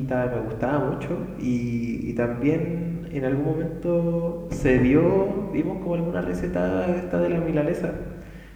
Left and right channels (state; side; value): identical; both; correlation 1.00